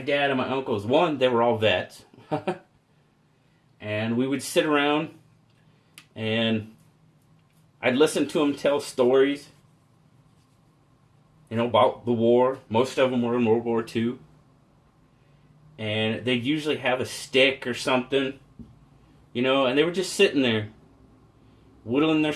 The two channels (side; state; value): both; identical; correlation 1.00